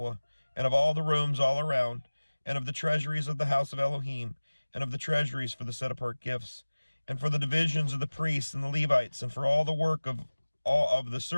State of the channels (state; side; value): inverted; both; correlation -1.00